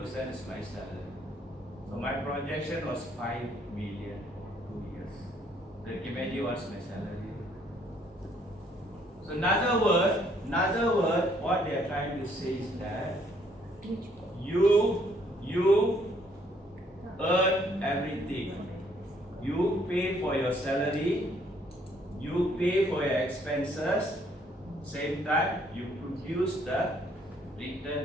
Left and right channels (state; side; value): normal; both; correlation 0.66